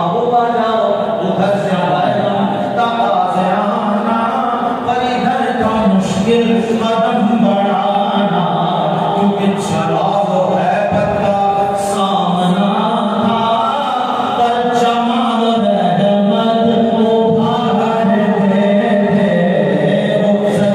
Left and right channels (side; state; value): both; identical; correlation 1.00